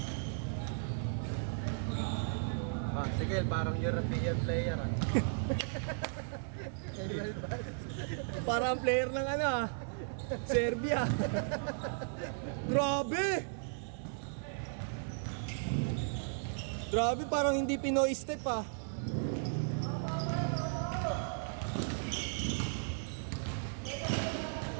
Ah, sige, parang European player ah. Parang player ng ano ah. Serbia. Grabe! Grabe, parang hindi Pinoy step ah.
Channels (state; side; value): silent; left; digital silence